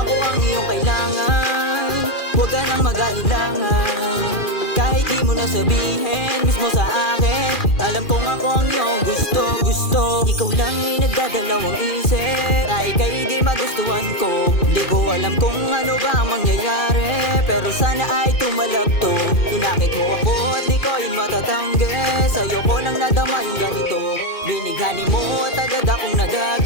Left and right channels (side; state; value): right; late; 2.4 ms